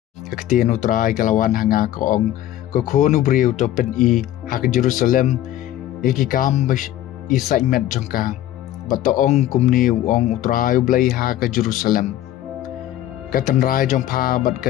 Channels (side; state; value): right; quieter; 13.1 dB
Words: Kaktian utrai kalawan hanga kaong kokonu briu to pen I hak Jerusalem iki kam isai met jongka batoong kumni ong utrai blai ha ke Jerusalem katan rai jongpa bat